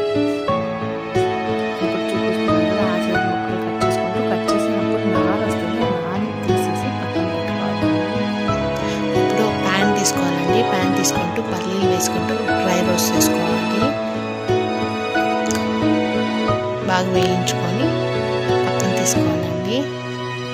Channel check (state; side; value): identical; both; correlation 1.00